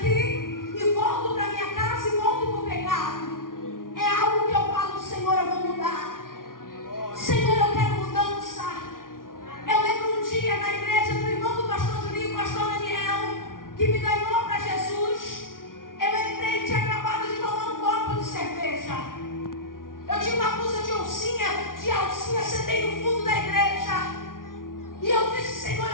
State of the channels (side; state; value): right; late; 0.90 ms